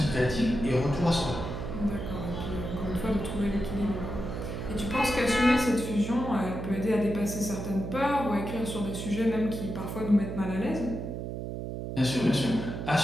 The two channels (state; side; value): noise; right; hum, 5 dB below the sound